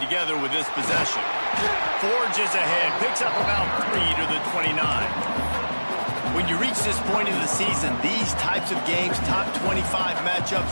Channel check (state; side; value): inverted; both; correlation -1.00